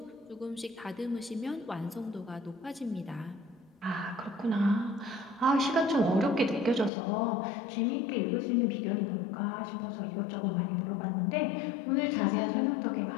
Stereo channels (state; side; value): drops out; right; at 6.9 s